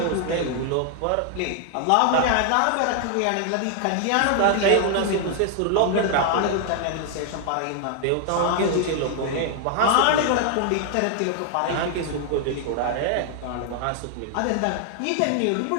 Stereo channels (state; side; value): different; both; correlation 0.00